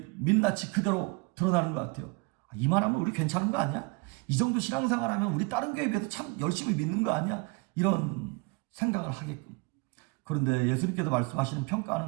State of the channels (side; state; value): left; quieter; 26.9 dB